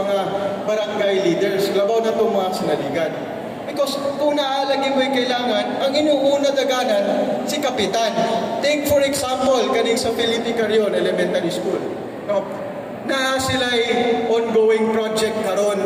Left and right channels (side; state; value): both; identical; correlation 1.00